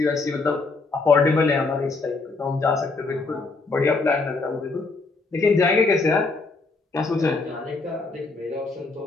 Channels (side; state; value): right; quieter; 3.8 dB